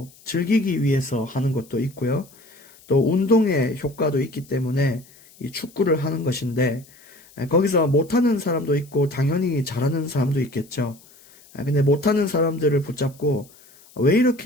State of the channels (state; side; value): noise; left; hiss, 26 dB below the sound